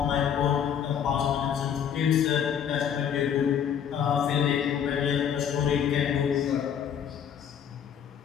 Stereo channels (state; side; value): quieter; right; 8.5 dB